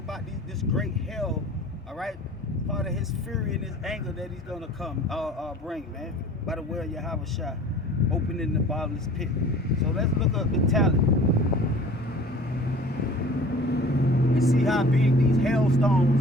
this great hail. All right. Part of his fury and his anger that he's going to bring, man. By the way of Yahweh Shai. Opening the bottomless pit. So let's look up the talent. And see how big these hailstones,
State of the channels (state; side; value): normal; both; correlation 0.46